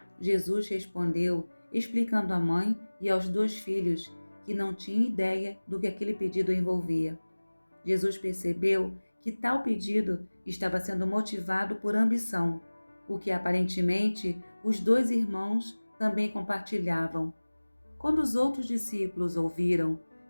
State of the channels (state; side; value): inverted; both; correlation -1.00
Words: Jesus respondeu, explicando à mãe e aos 2 filhos que não tinha ideia do que aquele pedido envolvia. Jesus percebeu que tal pedido estava sendo motivado por ambição, o que aparentemente os 2 irmãos também compartilhavam. Quando os outros discípulos ouviram,